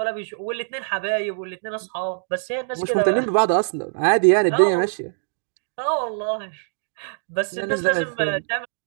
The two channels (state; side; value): silent; left; digital silence